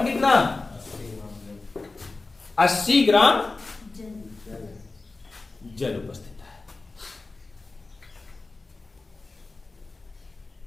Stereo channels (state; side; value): quieter; right; 3.6 dB